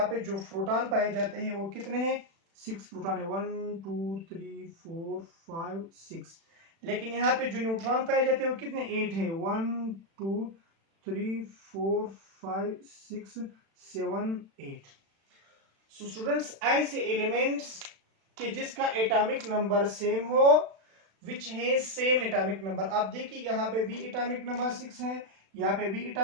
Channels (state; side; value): late; left; 36 ms